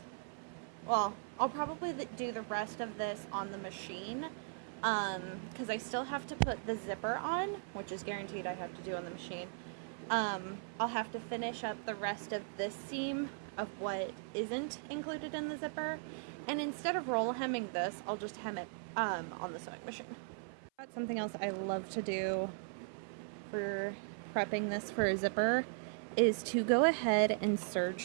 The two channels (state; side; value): silent; left; 52 dB below the other